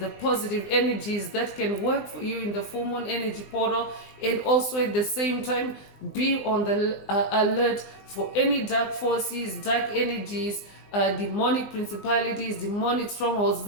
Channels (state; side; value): late; right; 19 ms